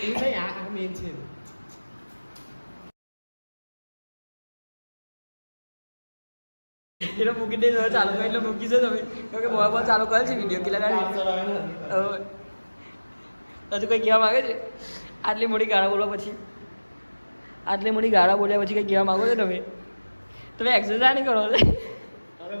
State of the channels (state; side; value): inverted; both; correlation -1.00